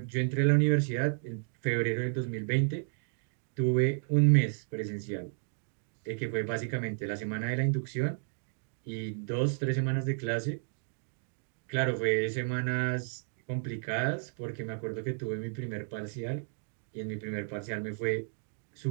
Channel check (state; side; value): silent; left; digital silence